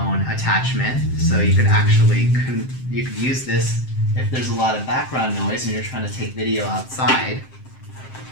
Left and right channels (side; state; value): right; late; 7.7 ms